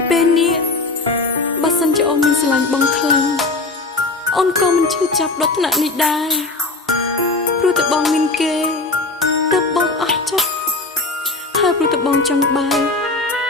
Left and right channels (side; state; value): right; quieter; 3.4 dB